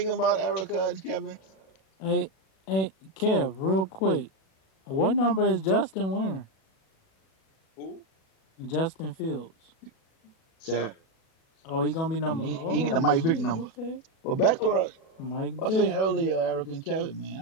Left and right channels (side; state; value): right; late; 37 ms